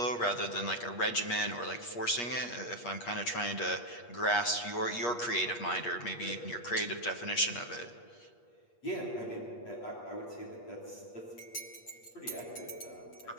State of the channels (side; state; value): right; late; 8.4 ms